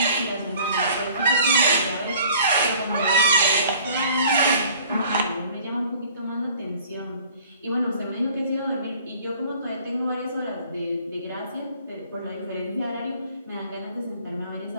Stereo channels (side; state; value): both; inverted; correlation -0.52